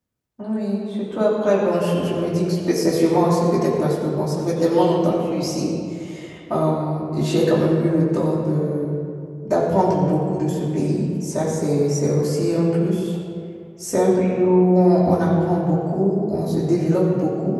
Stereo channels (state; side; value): identical; both; correlation 1.00